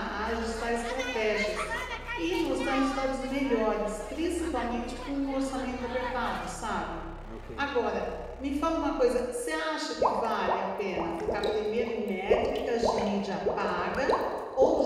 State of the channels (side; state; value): both; identical; correlation 1.00